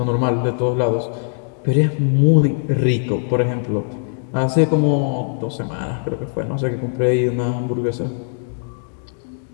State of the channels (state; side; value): silent; right; digital silence